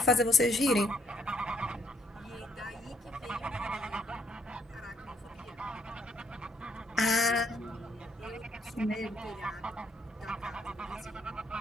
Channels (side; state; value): both; normal; correlation 0.70